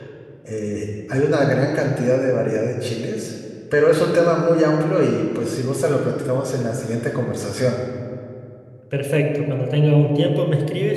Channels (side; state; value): both; identical; correlation 1.00